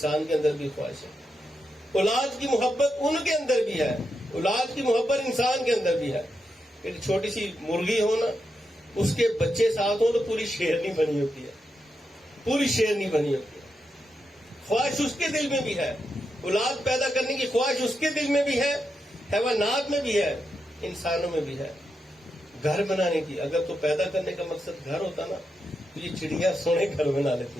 کے اندر بھی خواہش ہے. اولاد کی محبت ان کے اندر بھی ہے، اولاد کی محبت انسان کے اندر بھی ہے. ایک چھوٹی سی مرغی ہو نا، اس کے بچے ساتھ ہوں تو پوری شیرنی بنی ہوتی ہے، پوری شیرنی بنی ہوتی ہے. خواہش اس کے دل میں بھی ہے، اولاد پیدا کرنے کی خواہش اس کے دل میں بھی ہے، حیوانات میں بھی ہے، انسانوں میں بھی ہے. گھر بنانے کی، اگر تو پیدا کرنے کا مقصد گھر ہوتا نا تو یہ چڑیا سونے گھر بنا لیتی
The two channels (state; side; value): normal; both; correlation 0.85